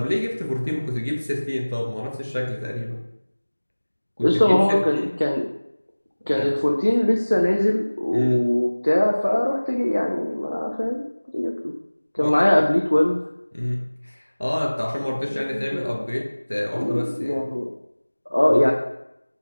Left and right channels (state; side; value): inverted; both; correlation -1.00